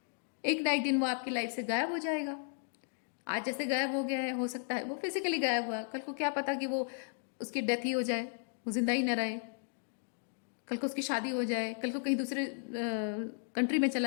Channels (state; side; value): silent; right; 55 dB below the other